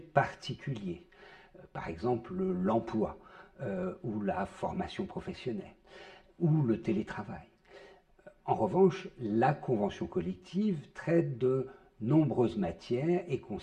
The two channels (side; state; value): both; identical; correlation 1.00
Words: particulier, par exemple l'emploi ou la formation professionnelle ou le télétravail. En revanche, la convention collective traite de nombreuses matières et